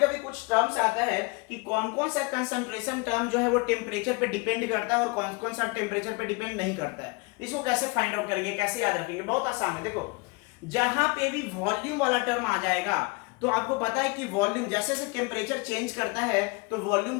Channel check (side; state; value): right; quieter; 28.1 dB